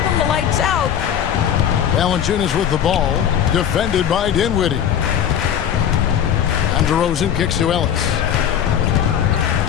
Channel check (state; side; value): quieter; right; 9.3 dB